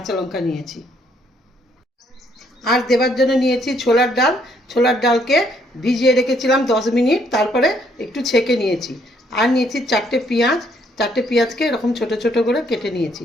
লঙ্কা নিয়েছি। আর দেবার জন্য নিয়েছি ছোলার ডাল। ছোলার ডালকে ভিজিয়ে রেখেছিলাম 10 মিনিট, তারপরে একটু ছেঁকে নিয়েছি। আর নিয়েছি 4টে পেঁয়াজ। 4টে পেঁয়াজকে এরকম ছোট ছোট করে কেটে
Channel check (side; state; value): both; normal; correlation 0.68